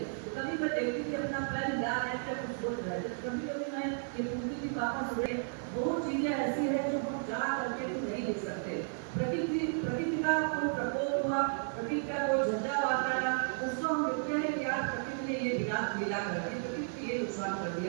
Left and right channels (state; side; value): silent; left; digital silence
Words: तो कभी मैं देखती थी अपना पैर हिला रहे थे, कुछ सोच रहे थे, कभी कभी मैं ये पूछती थी पापा सुबह बहुत चीजें ऐसी है जो हम जा करके तो नहीं लिख सकते। प्रकृति का कोई प्रकोप हुआ, प्रकृति का कोई झंझावात आया, उसको हम लिखते हैं कि आज प्रकृति ने ये विनाश मिला करके प्रकृति ये नुकसान कर